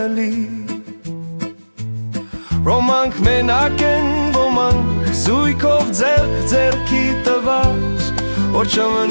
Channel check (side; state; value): both; inverted; correlation -1.00